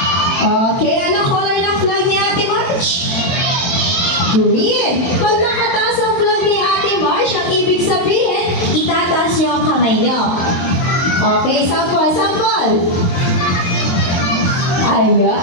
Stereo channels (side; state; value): right; late; 22 ms